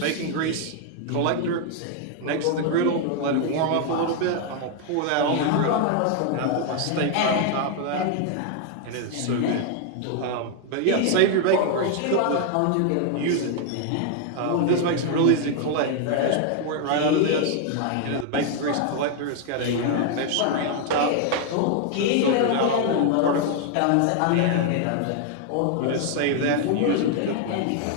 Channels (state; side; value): different; both; correlation 0.00